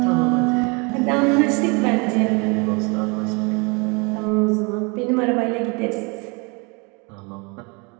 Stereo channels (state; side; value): quieter; left; 30.5 dB